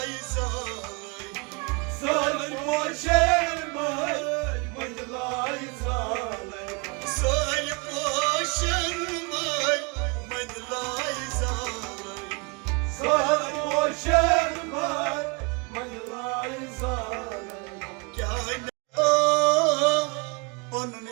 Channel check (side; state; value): left; quieter; 30.7 dB